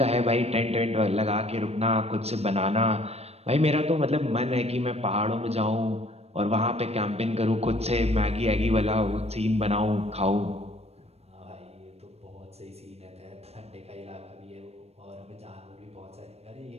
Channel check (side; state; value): left; late; 0.30 ms